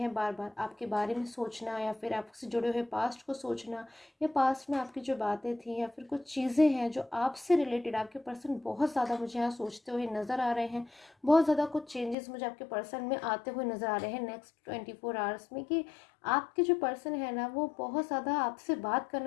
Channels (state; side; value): drops out; right; at 12.2 s